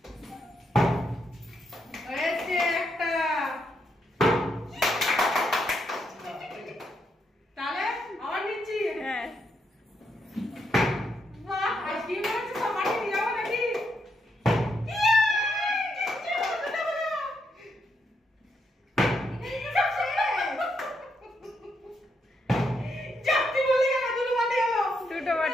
হয়েছে একটা। তাহলে আবার নিচ্ছি। হ্যাঁ বাহ, আইসক্রিম হচ্ছে সব বাটি নিয়ে যাবো নাকি? দুটো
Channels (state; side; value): normal; both; correlation 0.79